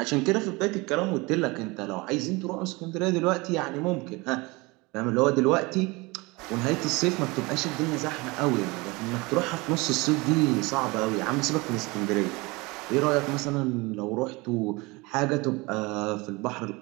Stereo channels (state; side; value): quieter; left; 24.5 dB